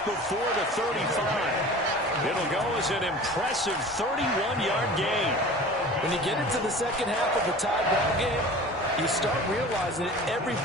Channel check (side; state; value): both; normal; correlation 0.40